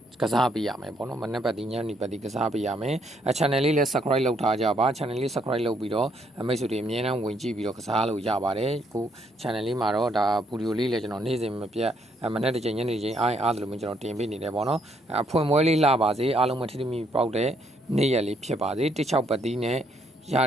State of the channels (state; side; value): normal; both; correlation 0.71